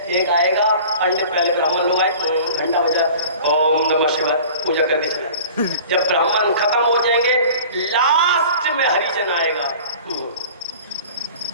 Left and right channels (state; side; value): inverted; both; correlation -0.43